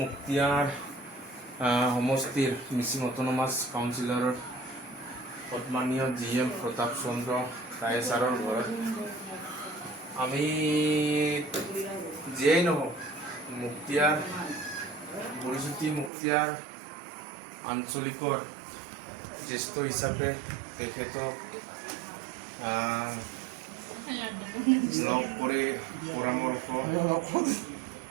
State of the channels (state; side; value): drops out; left; at 16.1 s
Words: মুক্তিয়াৰ সমষ্টিৰ মিচিং অট'নমাছ কাউন্সিলৰ সন্মানীয় GM প্ৰতাপ চন্দ্ৰ ৰায় ছাৰৰ ঘৰত। আমি যিয়েই নহওক মুক্তিয়াৰ বুঢ়ীবতী মুক্তিয়াৰ আঞ্চলিকৰ জ্যেষ্ঠ হিচাপে তেখেতক লগ কৰি পৰামৰ্শ